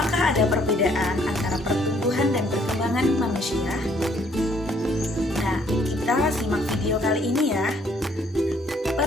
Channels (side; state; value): both; normal; correlation 0.65